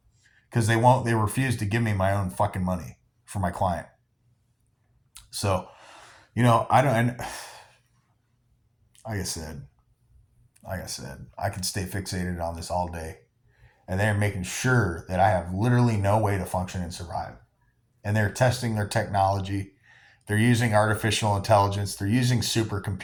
they refuse to give me my own fucking money for my client. So, I don't, like I said, I can stay fixated on this all day. And they're making sure that I have literally no way to function and survive. And they're testing their technology. They're using artificial intelligence. They're using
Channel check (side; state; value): both; identical; correlation 1.00